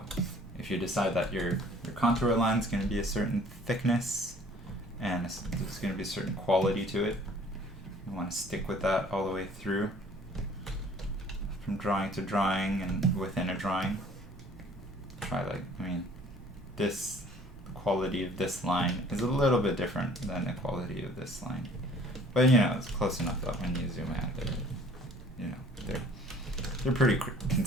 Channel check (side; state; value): both; normal; correlation 0.53